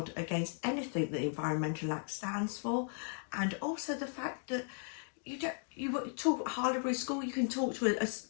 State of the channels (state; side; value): silent; right; 53 dB below the other